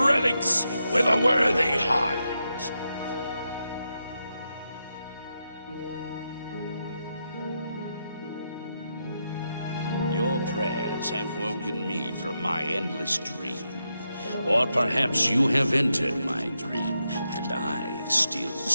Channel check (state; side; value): inverted; both; correlation -0.85